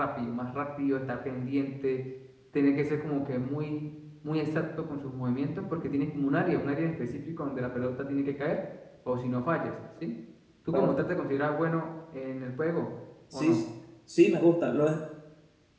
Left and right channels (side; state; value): both; identical; correlation 1.00